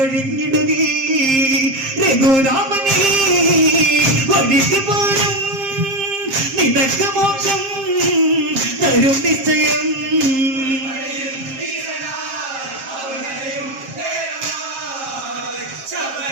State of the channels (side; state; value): left; late; 7.5 ms